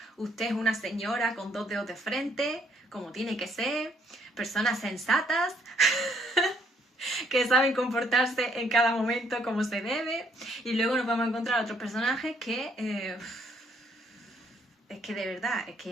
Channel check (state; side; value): normal; both; correlation 0.68